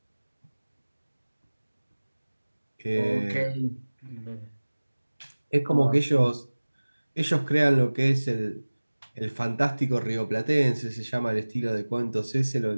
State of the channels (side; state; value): both; inverted; correlation -1.00